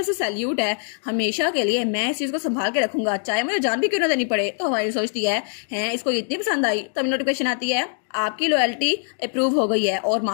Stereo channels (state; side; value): silent; right; 62 dB below the other